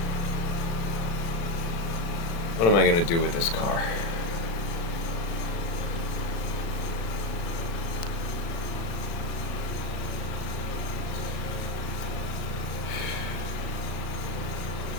What am I gonna do with this car?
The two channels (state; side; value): late; right; 36 ms